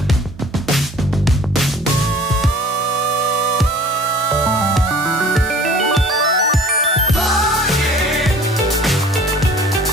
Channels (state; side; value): normal; both; correlation 0.49